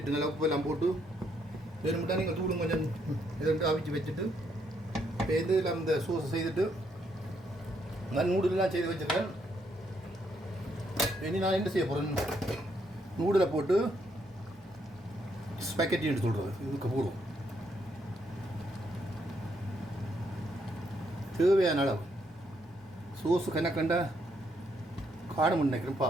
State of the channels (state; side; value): normal; both; correlation 0.74